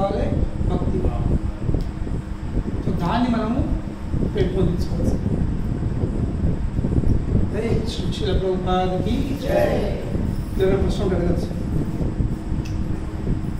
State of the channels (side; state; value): both; identical; correlation 1.00